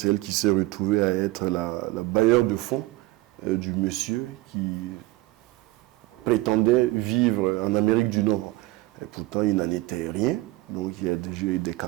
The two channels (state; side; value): quieter; left; 19.1 dB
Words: elle qui s'est retrouvée à être la bailleur de fonds du monsieur qui prétendait vivre en Amérique du Nord. Et pourtant, il n'en était rien. Donc, il y a déjà eu des cas